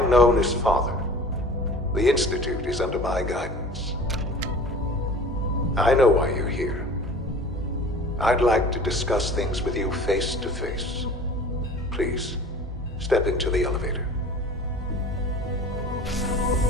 known as Father. The Institute is under my guidance. I know why you're here. I'd like to discuss things with you face to face. Please, step into the elevator.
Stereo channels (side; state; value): both; normal; correlation 0.42